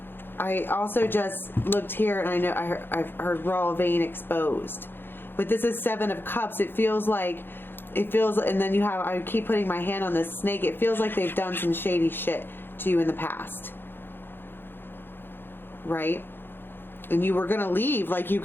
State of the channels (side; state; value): right; late; 0.10 ms